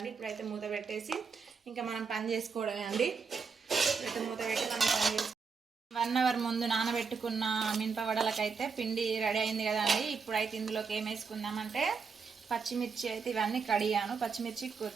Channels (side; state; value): left; quieter; 5.3 dB